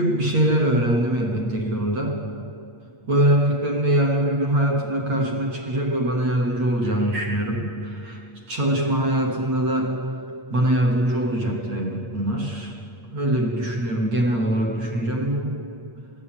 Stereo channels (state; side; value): late; left; 8.6 ms